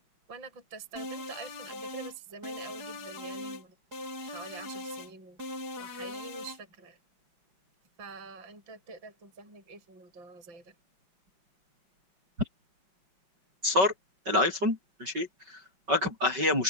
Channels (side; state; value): left; late; 5.3 ms